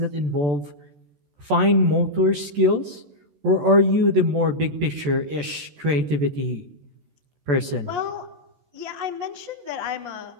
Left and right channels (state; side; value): late; left; 14 ms